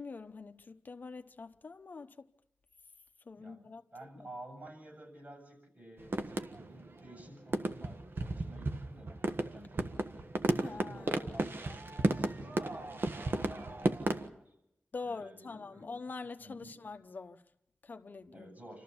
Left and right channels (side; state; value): both; normal; correlation 0.89